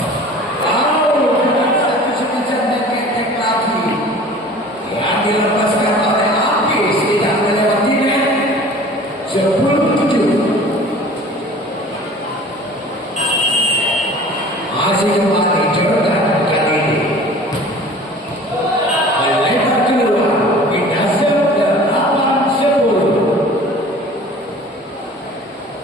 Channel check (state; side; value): normal; both; correlation 0.44